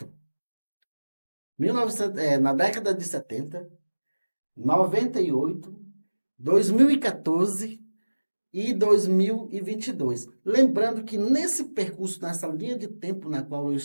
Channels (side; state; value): both; inverted; correlation -1.00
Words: Na década de 70, 98, 2014 e 2022. Lembrando que nesse percurso, nessa linha de tempo na qual eu